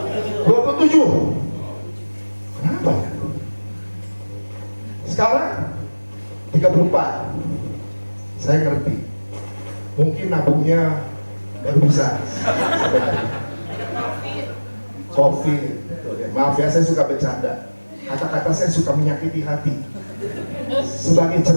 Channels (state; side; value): inverted; both; correlation -1.00